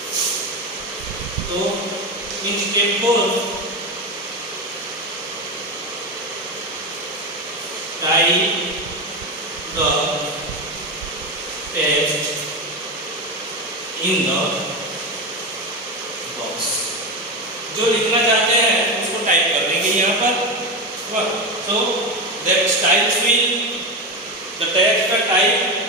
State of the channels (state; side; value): normal; both; correlation 0.17